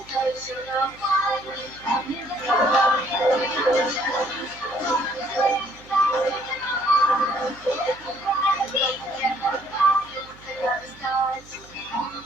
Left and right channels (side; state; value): right; noise; hum, 23 dB below the sound